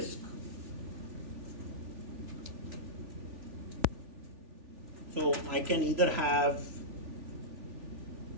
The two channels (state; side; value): late; left; 3.4 ms